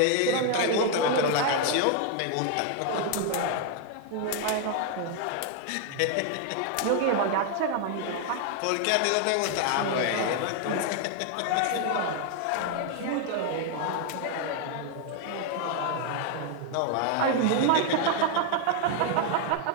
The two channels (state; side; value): different; both; correlation 0.00